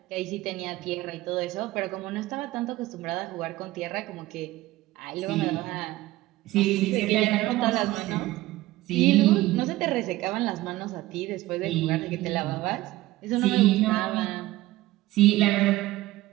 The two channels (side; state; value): left; quieter; 17.4 dB